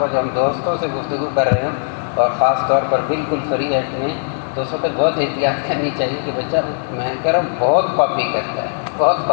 جب ہم دوستوں سے گفتگو کر رہے ہوں اور خاص طور پر بالکل فری ہیڈ میں، تو اس وقت بہت احتیاط کرنی چاہیے کہ بچہ میں کہہ رہا ہوں بہت کاپی کرتا ہے، بہت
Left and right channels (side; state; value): right; silent; 67 dB below the other